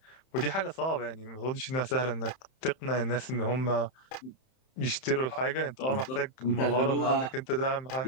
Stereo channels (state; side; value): late; right; 31 ms